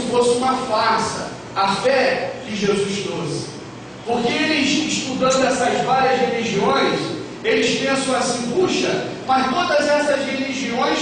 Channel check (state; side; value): identical; both; correlation 1.00